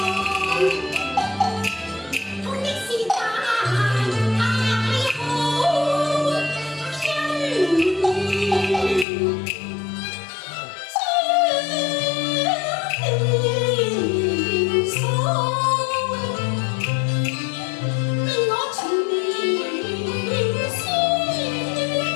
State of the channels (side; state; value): right; drops out; at 9.1 s